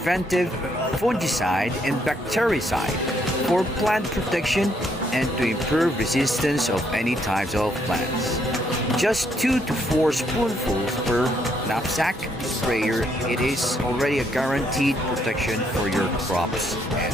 fungicide and bactericide for plant protection and to improve resistance of any types of plants. Just 2 to 4 spoonfuls per knapsack sprayer, it is already a guaranteed protection for your crops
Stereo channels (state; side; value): normal; both; correlation 0.72